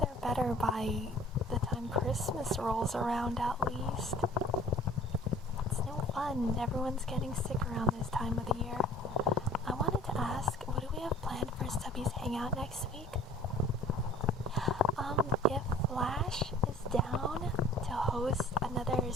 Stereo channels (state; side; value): normal; both; correlation 0.50